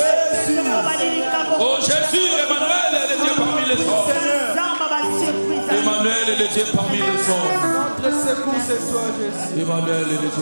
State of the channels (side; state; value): both; inverted; correlation -1.00